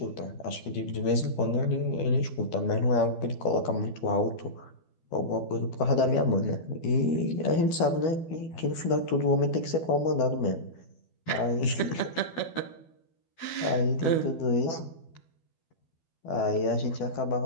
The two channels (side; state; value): right; late; 12 ms